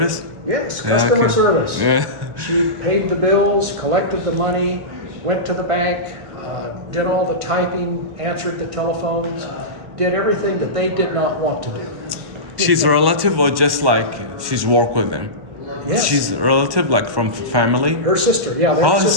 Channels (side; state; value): left; late; 1.1 ms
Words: Yes, Yeah, customer okay. service. Yeah. She paid the bills, collected the money, went to the bank, did all the typing, answered the telephones, did everything that they did not want to do. She's a relative or just like she's work with them? Yes. She's a relative, like from family? Her sister, yeah. they're Oh,